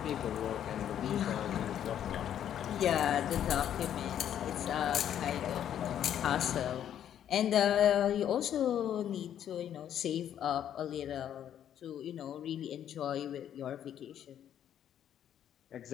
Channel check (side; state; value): right; quieter; 10.1 dB